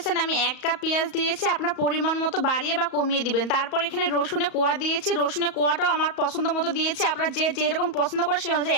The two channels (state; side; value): late; right; 34 ms